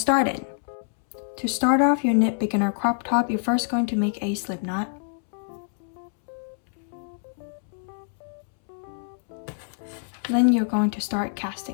To start off your knit beginner crop top, you're first going to make a slip knot. Then you're going to start casting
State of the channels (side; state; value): right; silent; 61 dB below the other